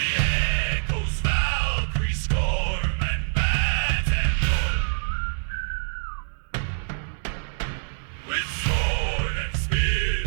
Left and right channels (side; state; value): left; silent; digital silence